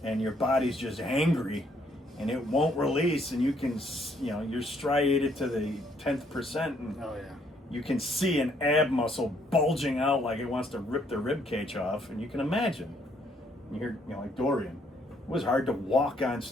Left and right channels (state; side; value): normal; both; correlation 0.68